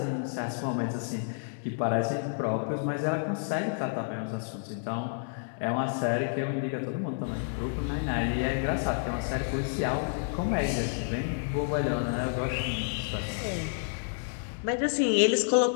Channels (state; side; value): silent; right; 58 dB below the other